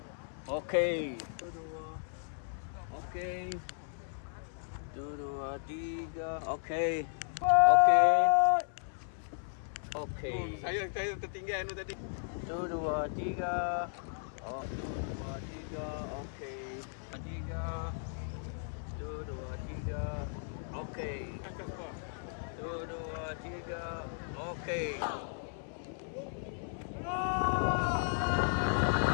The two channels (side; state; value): right; silent; 54 dB below the other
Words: Okey. 1, 2. Okey. 1, 2, 3. Okey. Okey. Saya tertinggal tu tadi. 1, 2, 3. Oh, 1, 2, 3. Okey. 3. 1, 2, 3. Okey. 1, 2, 3. Okey.